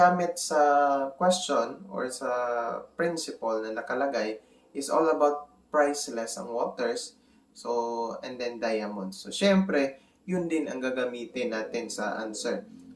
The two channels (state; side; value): identical; both; correlation 1.00